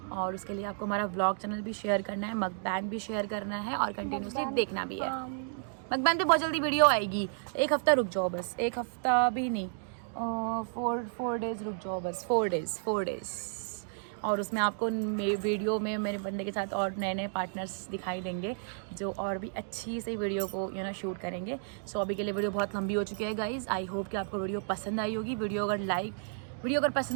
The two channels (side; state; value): left; silent; digital silence